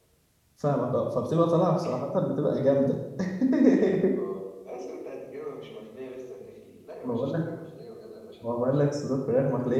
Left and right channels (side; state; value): both; identical; correlation 1.00